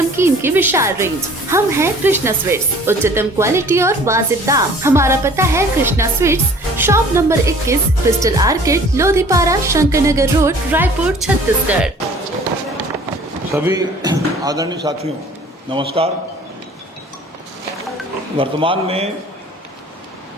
की विशाल रेंज। हम हैं कृष्णा स्वीट्स, उच्चतम क्वालिटी और वाजिब दाम। हमारा पता है Krishna Sweets, shop number 21, Crystal Orchid, Lodhipara, Shankar Nagar road, Raipur, Chhattisgarh. सभी आदरणीय साथियों नमस्कार। वर्तमान में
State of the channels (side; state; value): both; normal; correlation 0.50